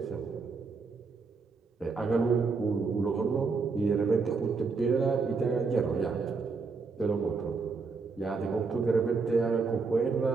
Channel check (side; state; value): left; quieter; 4.6 dB